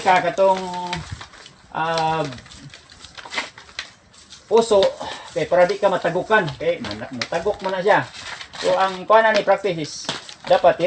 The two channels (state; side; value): identical; both; correlation 1.00